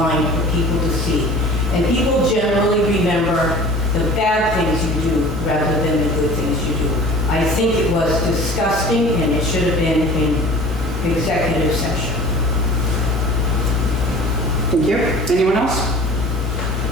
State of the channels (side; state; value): both; normal; correlation 0.43